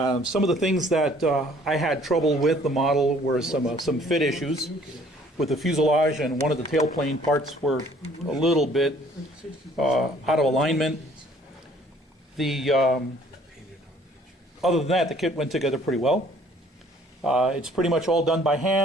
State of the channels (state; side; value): normal; both; correlation 0.58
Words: of the things that I had trouble with the model were some fit issues with the fuselage, and one of the tailplane parts were a little bit out of alignment. Other than that, the kit went together pretty well. It's pretty much all done by